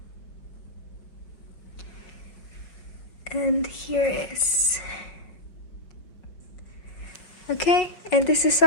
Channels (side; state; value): right; late; 5.2 ms